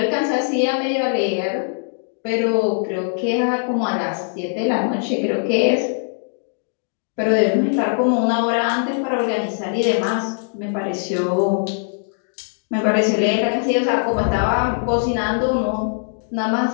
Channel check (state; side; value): silent; right; digital silence